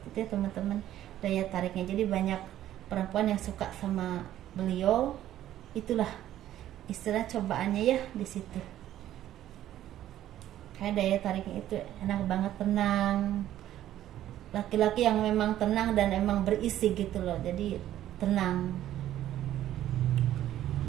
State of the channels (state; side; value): quieter; left; 12.6 dB